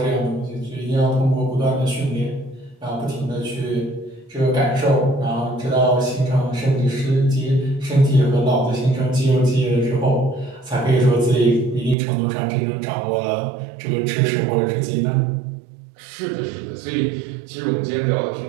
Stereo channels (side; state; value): left; drops out; at 12.0 s